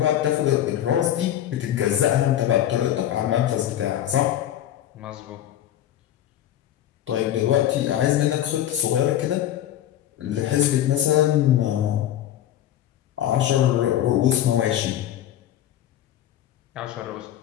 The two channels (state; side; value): quieter; right; 11.9 dB